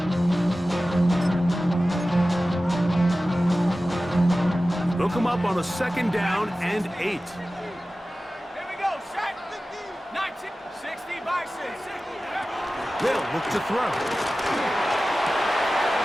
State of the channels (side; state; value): both; normal; correlation 0.96